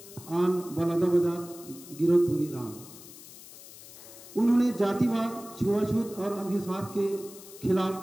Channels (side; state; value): left; noise; hiss, 17 dB below the sound